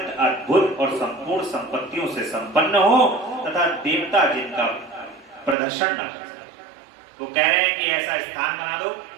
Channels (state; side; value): drops out; left; at 5.6 s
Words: अद्भुत और संपूर्ण संपत्तियों से संपन्न हो तथा देवता जिनका प्रदर्शन न कर सके। वो कह रहे हैं कि ऐसा स्थान बना दो